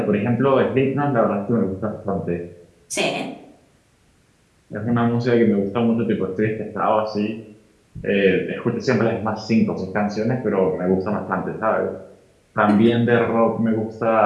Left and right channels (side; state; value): both; identical; correlation 1.00